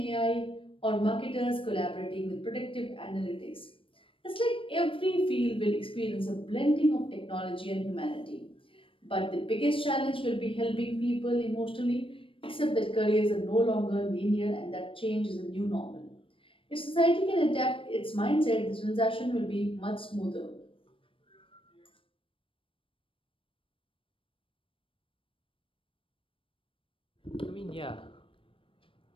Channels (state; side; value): late; right; 0.25 ms